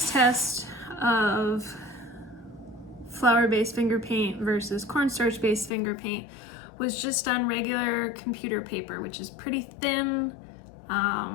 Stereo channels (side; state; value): right; drops out; at 5.7 s